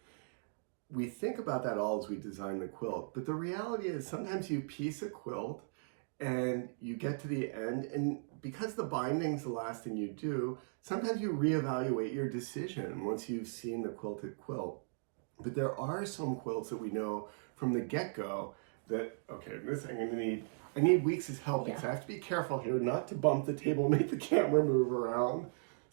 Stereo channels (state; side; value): silent; left; digital silence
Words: We think about that all as we design the quilt, but the reality is sometimes you piece a quilt and you get to the end, and because the binding's the last thing you do, sometimes you reevaluate your decision once you've seen the quilted quilt. But there are some quilts that we know from the get-go that, okay, this I need Weeks' help because I have to be careful here not to bump the table and make the camera move around